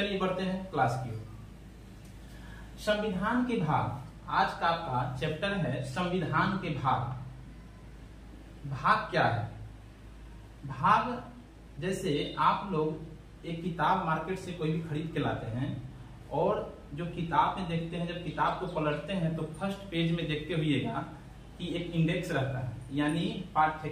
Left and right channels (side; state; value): both; identical; correlation 1.00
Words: बढ़ते हैं क्लास की ओर। संविधान के भाग, आज का आपका चैप्टर है संविधान के भाग। भाग क्या है? भाग जैसे आप लोग एक किताब मार्केट से कोई भी खरीद के लाते हैं और जो किताब में देखते हैं, जब किताब को पलटते हैं तो फर्स्ट पेज में देखते हुएगा कि एक इंडेक्स रहता है, यानी